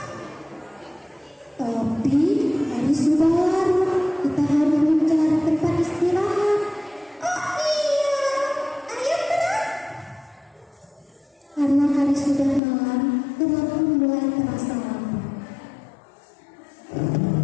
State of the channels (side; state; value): right; drops out; at 12.6 s